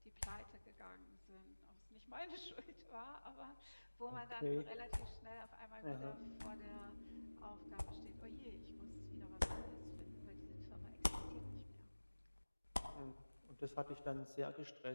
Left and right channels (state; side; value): inverted; both; correlation -1.00